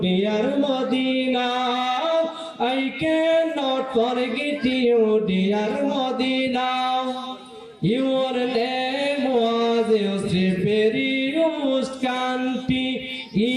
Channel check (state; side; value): identical; both; correlation 1.00